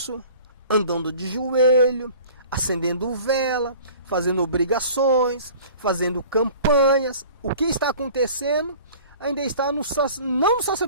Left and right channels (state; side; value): inverted; both; correlation -0.45